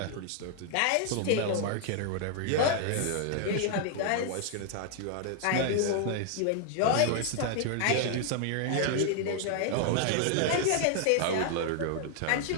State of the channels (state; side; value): different; both; correlation 0.00